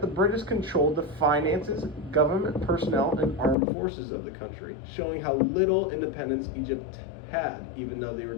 the British controlled the finances, government personnel, and armed forces of the country, showing how little independence Egypt had, even though they were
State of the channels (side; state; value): right; drops out; at 3.6 s